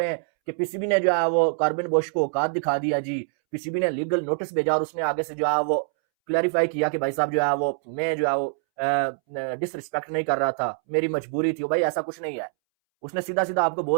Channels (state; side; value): silent; left; 62 dB below the other